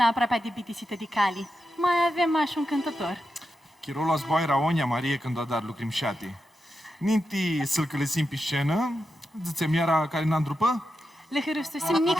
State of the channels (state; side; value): normal; both; correlation 0.88